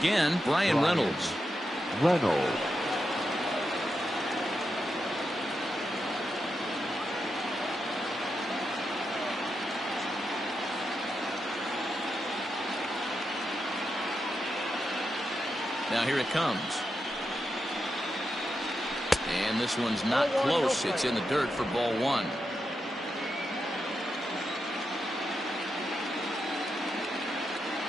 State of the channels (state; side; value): normal; both; correlation 0.86